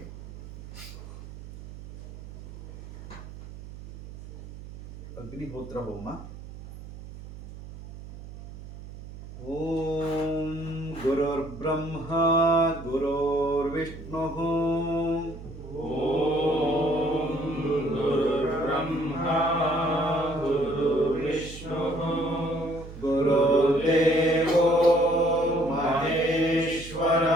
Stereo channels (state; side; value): noise; right; hum, 14 dB below the sound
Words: ಅಗ್ನಿಹೋತ್ರ ಹೋಮ. ಓಂ ಗುರುರ್ಬ್ರಹ್ಮ ಗುರುರ್ವಿಷ್ಣು ಓಂ ಗುರುರ್ಬ್ರಹ್ಮ ಗುರುರ್ವಿಷ್ಣು ಗುರುದೇವೋ